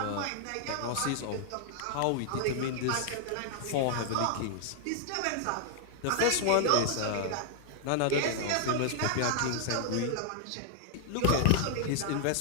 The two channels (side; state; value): both; different; correlation 0.00